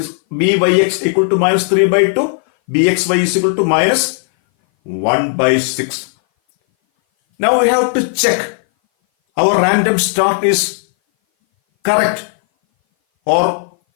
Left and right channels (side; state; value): right; silent; 59 dB below the other